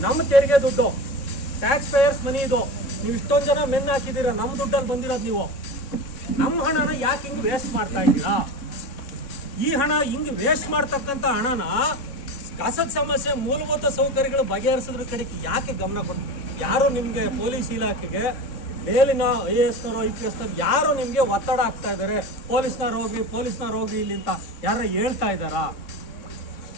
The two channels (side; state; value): right; late; 3.6 ms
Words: ನಮ್ಮ ತೆರಿಗೆ ದುಡ್ಡು, ಟ್ಯಾಕ್ಸ್ ಪೇಯರ್ಸ್ ಮನಿ ಇದು, ನೀವು ಇಷ್ಟೊಂದು ಜನ ಮೆನ್ ಹಾಕಿದ್ದೀರಾ, ನಮ್ಮ ದುಡ್ಡಲ್ಲಿ ಬಂದಿರೋದು ನೀವು. ನಮ್ಮ ಹಣನ ಯಾಕೆ ಹಿಂಗೆ ವೇಸ್ಟ್ ಮಾಡ್ತಾ ಇದ್ದೀರಾ? ಈ ಹಣ ಹಿಂಗೆ ವೇಸ್ಟ್ ಮಾಡ್ತಕ್ಕಂಥ ಹಣನ ಕಸದ ಸಮಸ್ಯೆ, ಮೂಲಭೂತ ಸೌಕರ್ಯಗಳು ಬಗೆಹರಿಸೋದ್ರ ಕಡೆಗೆ ಯಾಕೆ ಗಮನ ಕೊಡ್ತೀವಿ? ಯಾರು ನಿಮಗೆ ಪೊಲೀಸ್ ಇಲಾಖೆಗೆ ಮೇಲಿನ IAS IPS ಯಾರು ನಿಮಗೆ ಒತ್ತಡ ಆಗ್ತಾ ಇದ್ದಾರೆ, ಪೊಲೀಸ್ನವ್ರು ಹೋಗಿ ಇಲ್ಲಿ ಅಂತ ಯಾರು ಹೇಳ್ತಾ ಇದ್ದಾರಾ?